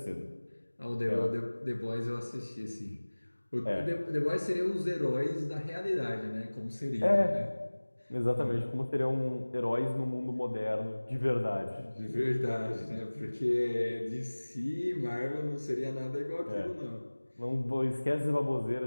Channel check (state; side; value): inverted; both; correlation -1.00